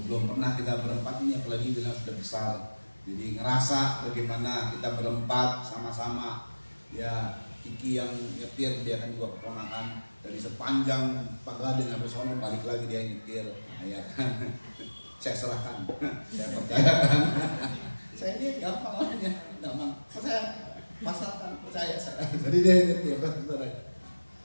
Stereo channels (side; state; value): both; inverted; correlation -1.00